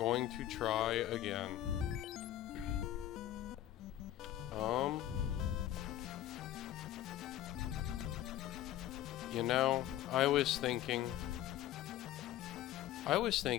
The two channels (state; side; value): quieter; right; 12.8 dB